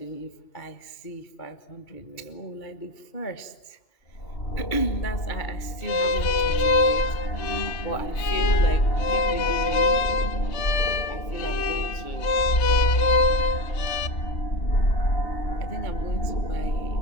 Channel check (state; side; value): late; right; 2.3 ms